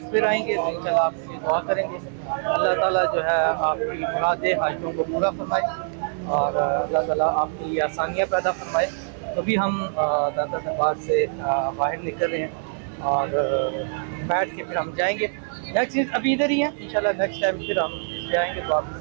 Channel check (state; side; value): silent; left; digital silence